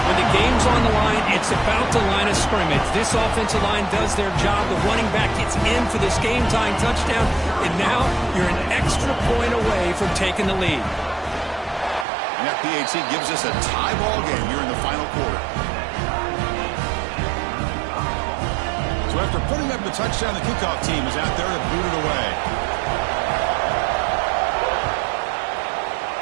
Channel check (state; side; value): drops out; left; at 12.1 s